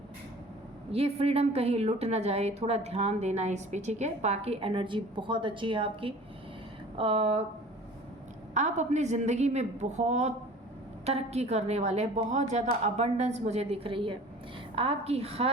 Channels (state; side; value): normal; both; correlation 0.44